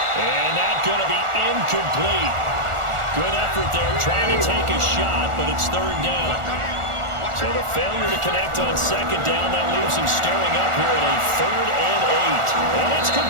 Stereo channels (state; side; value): late; left; 1.4 ms